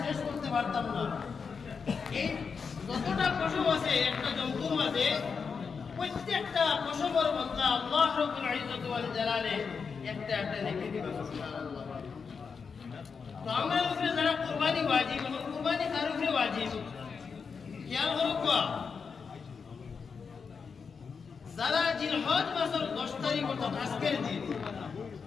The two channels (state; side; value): quieter; right; 5.6 dB